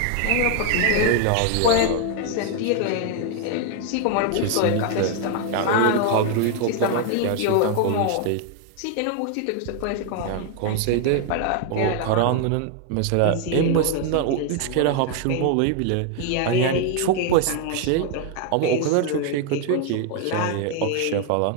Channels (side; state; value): both; different; correlation 0.00